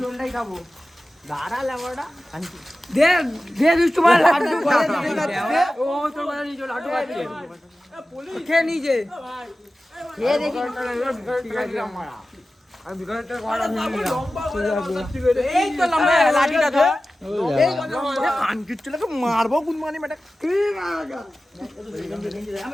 খেয়ে নিজে মারবো গুনমানি বেটা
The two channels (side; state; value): both; normal; correlation 0.95